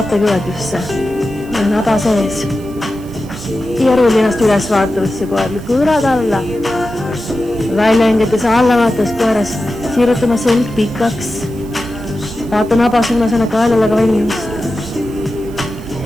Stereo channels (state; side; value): noise; right; hiss, 25 dB below the sound